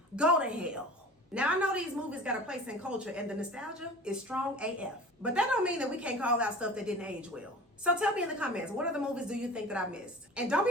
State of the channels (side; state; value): both; normal; correlation 0.40